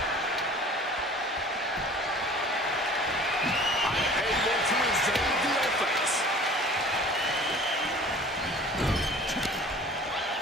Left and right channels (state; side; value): normal; both; correlation 0.46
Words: Unable to evade the offense.